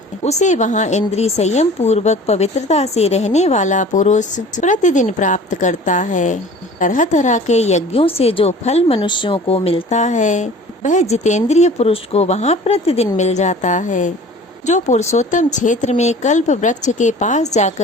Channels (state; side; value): normal; both; correlation 0.44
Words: उसे वहाँ इंद्रिय संयम पूर्वक पवित्रता से रहने वाला पुरुष प्रतिदिन प्राप्त करता है। तरह तरह के यज्ञों से जो फल मनुष्यों को मिलता है, वह जितेंद्रिय पुरुष को वहाँ प्रतिदिन मिल जाता है। जो पुरुषोत्तम क्षेत्र में कल्प वृक्ष के पास